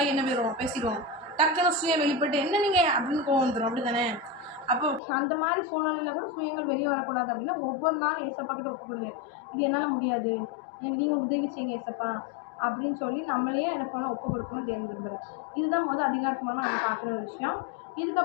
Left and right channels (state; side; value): drops out; right; at 5.0 s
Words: என்ன போயிடுவோம், பேசிடுவோம். டக்குன்னு சுயம் வெளிப்பட்டு என்ன நீங்கள் அப்படின்னு கோவம் வந்துடும். அப்படி தானே? அப்போ அந்த மாதிரி சூழ்நிலையில் கூட சுயங்கள் வெளியே வரக்கூடாது அப்படின்னா ஒவ்வொரு நாளும் ஏசப்பா கிட்ட ஒப்பு கொடுங்க. இது என்னால் முடியாது, எனக்கு நீங்கள் உதவி செய்யுங்க ஏசப்பா அப்படின்னு சொல்லி நம்மளே என்ன பண்ண ஒப்பு கொடுக்கணும் தேவன் விரும்புகிறோம். இதுதான் அதிகாரத்துமான நம்ம பார்க்குற ஒரு விஷயம்.